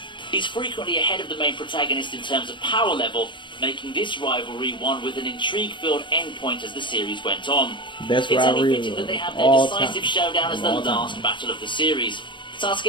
He's frequently ahead of the main protagonist in terms of power level, making this rivalry one with an intrigue-filled endpoint as the series went on. Best it's only rivalry fitting that they have their all decisive time. showdown as the All last time. battle of the series.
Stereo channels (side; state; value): right; late; 0.23 ms